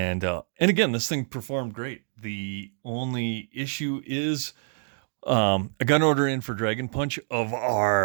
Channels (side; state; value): left; silent; 61 dB below the other